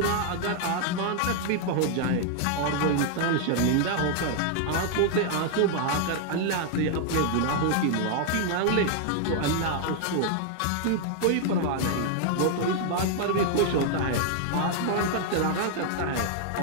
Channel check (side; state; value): both; different; correlation 0.00